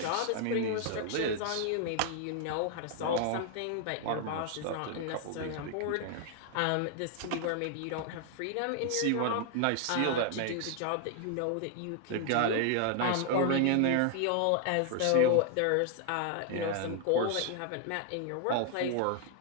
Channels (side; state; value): both; different; correlation 0.00